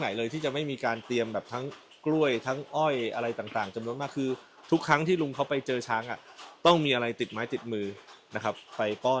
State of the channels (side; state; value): both; identical; correlation 1.00